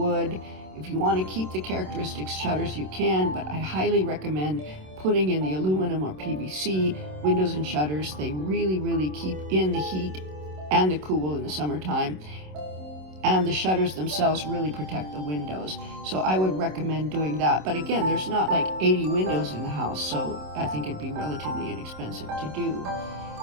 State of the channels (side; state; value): left; late; 27 ms